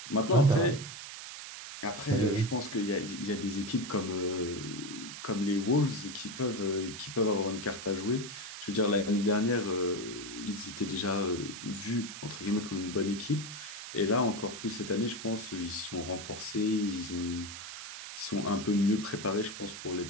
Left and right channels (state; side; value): noise; right; hiss, 10 dB below the sound